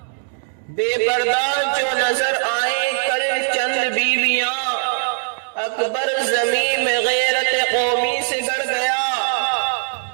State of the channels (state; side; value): silent; left; digital silence